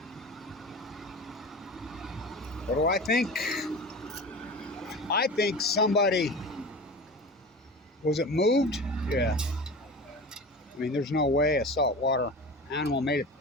What do I think? I think somebody, was it moved? Yeah. I mean, there's no way a saltwater animal made it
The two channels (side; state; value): both; normal; correlation 0.32